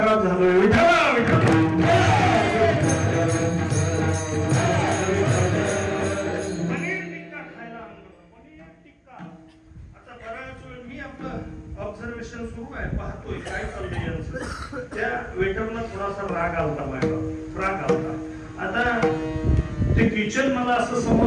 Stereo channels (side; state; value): both; identical; correlation 1.00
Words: झालोय. ऑब्झर्वेशन सुरू आहे, पाहतोय काय चाललंय यांचं. त्या वेटरला थोडासा राग आलता. आता ते किचन मला असं